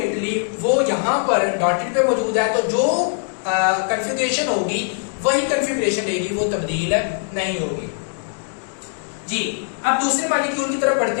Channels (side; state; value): right; silent; 65 dB below the other